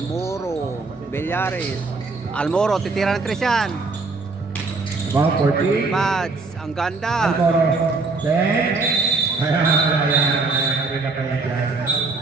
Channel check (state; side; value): quieter; left; 3.8 dB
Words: Villares. Almoro, titira ng 3 yan. About 14. Pads, ang ganda. Almoro. 10. Ayan. Hindi na kaya dyan.